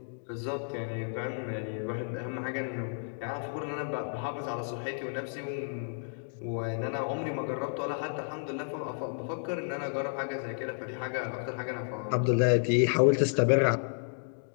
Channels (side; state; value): right; silent; digital silence